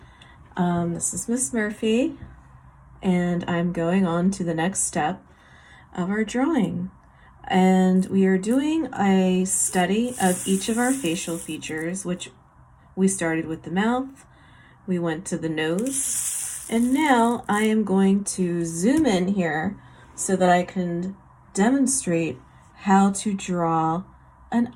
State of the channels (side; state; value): both; identical; correlation 1.00